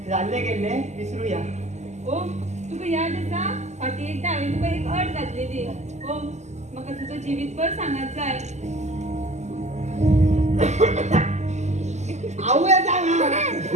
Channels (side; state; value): left; late; 0.33 ms